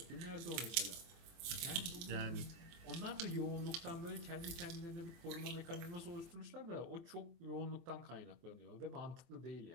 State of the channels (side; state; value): left; late; 24 ms